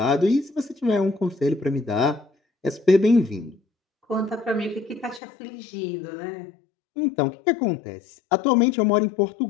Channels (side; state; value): right; drops out; at 5.2 s